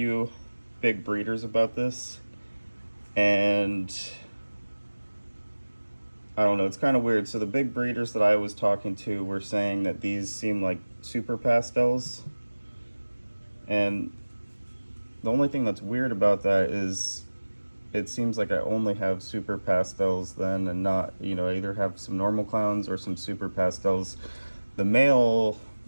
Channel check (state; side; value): inverted; both; correlation -1.00